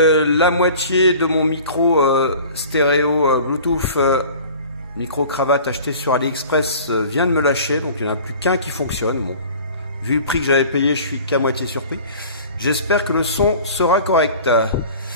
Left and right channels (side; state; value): both; inverted; correlation -0.44